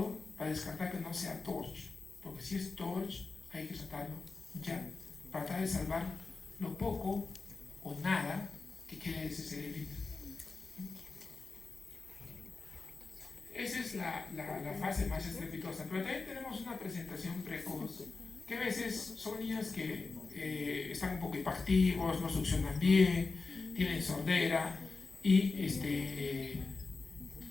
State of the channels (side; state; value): right; quieter; 4.0 dB